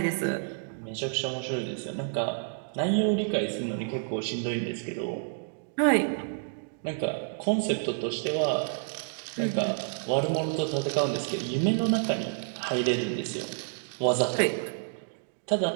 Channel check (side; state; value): left; silent; digital silence